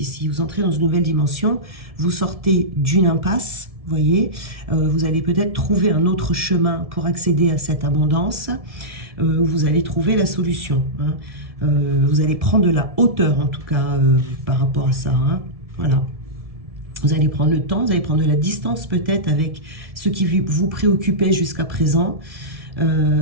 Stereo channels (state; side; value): late; left; 1.7 ms